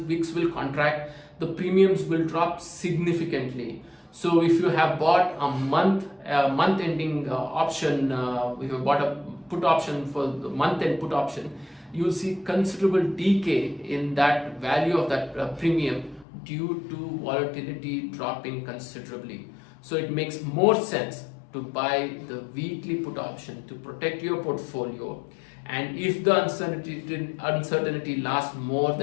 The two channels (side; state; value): right; drops out; at 16.2 s